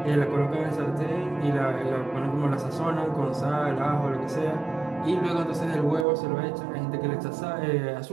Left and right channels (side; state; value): left; drops out; at 6.1 s